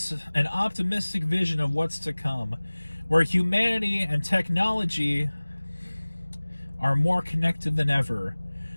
an optimistic vision of what's to come, where humanity and technology are more connected than ever.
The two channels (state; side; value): inverted; both; correlation -1.00